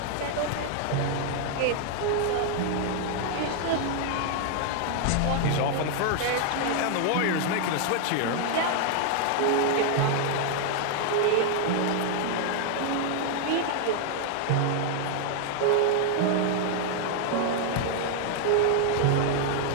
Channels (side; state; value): both; different; correlation -0.01